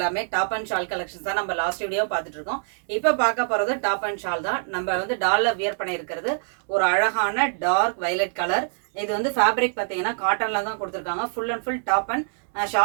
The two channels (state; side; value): silent; left; digital silence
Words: டாப் அண்ட் ஷால் கலெக்ஷன்ஸ் தான். நம்ம லாஸ்ட் வீடியோ பார்த்துட்டு இருக்கோம். இப்போ பார்க்க போறது டாப் அண்ட் ஷால் தான். நம்ம வந்து டால்ல வியர் பண்ணி இருக்கிறது ஒரு அழகான டார்க் வயலட் கலர். இது வந்து ஃபேப்ரிக் பார்த்தீங்கன்னா காட்டன்ல தான் கொடுத்துருக்காங்க. Full and full top and